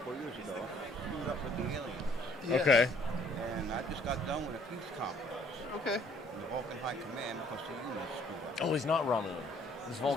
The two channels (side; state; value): both; normal; correlation 0.60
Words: of years ago, screwed up with the aliens. Yes. Okay. And I just got done with a peace conference. Okay. In the Vulcan High Command because the humans screwed up. Oh, he's not Romulan. He's